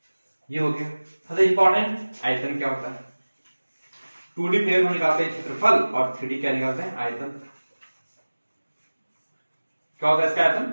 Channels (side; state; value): both; inverted; correlation -1.00